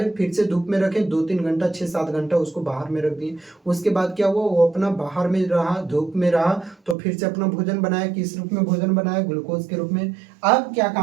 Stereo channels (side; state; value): left; drops out; at 7.0 s